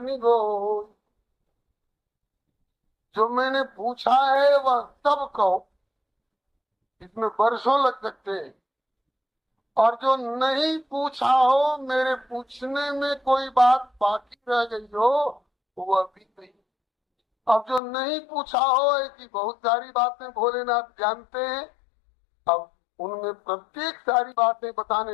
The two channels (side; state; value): right; drops out; at 17.8 s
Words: गोई। जो मैंने पूछा है वह सब कहो, इसमें वर्षों लग सकते हैं। और जो नहीं पूछा हो, मेरे पूछने में कोई बात बाकी रह गई हो, वह भी नहीं। अब जो नहीं पूछा हो, ऐसी बहुत सारी बातें भोलेनाथ जानते हैं। अब उनमें प्रत्येक सारी बातें बताने